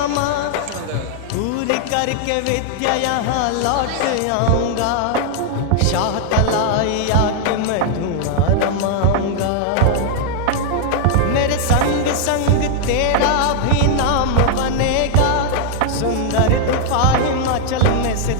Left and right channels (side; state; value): both; different; correlation -0.01